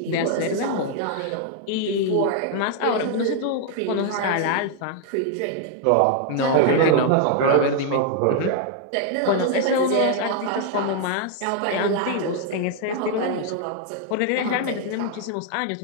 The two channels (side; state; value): both; different; correlation 0.00